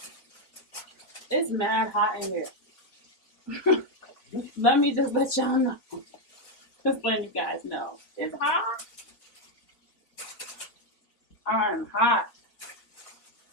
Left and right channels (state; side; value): late; right; 4.4 ms